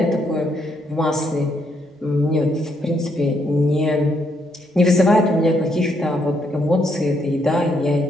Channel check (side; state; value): both; normal; correlation 0.74